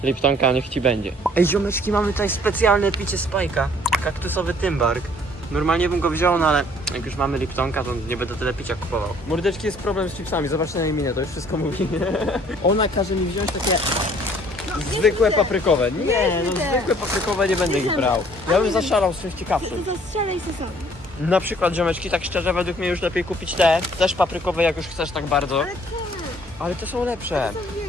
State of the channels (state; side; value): normal; both; correlation 0.58